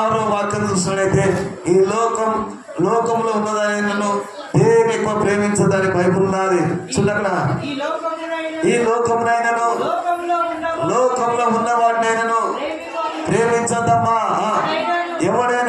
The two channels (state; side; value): identical; both; correlation 1.00